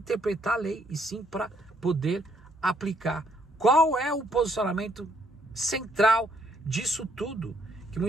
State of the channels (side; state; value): both; normal; correlation 0.70